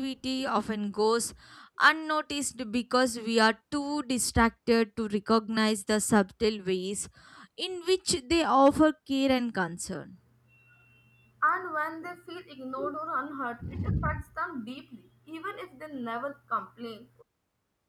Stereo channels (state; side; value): identical; both; correlation 1.00